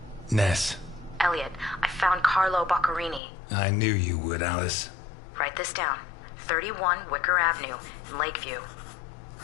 Ness, Elliot, I found Carlo Boccarini. I knew you would, Alice. Write this down. 31 Wicker Avenue in Lakeview.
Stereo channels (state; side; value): drops out; right; at 3.2 s